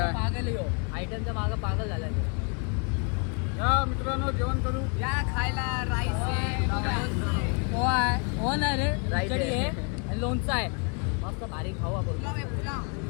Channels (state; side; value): quieter; right; 38.1 dB